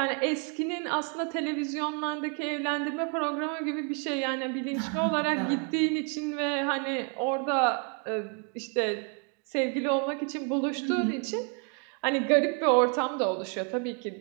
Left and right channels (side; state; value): left; quieter; 37.0 dB